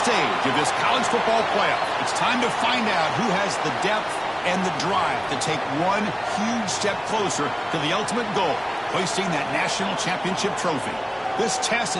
of this college football playoff. It's time to find out who has the depth and the drive to take one huge step closer to the ultimate goal, hoisting that national championship trophy. This test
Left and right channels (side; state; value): both; identical; correlation 1.00